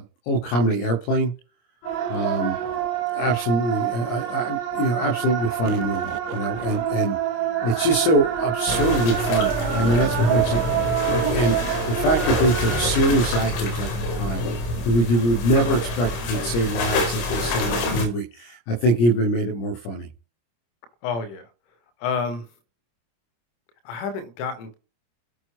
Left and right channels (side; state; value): right; late; 26 ms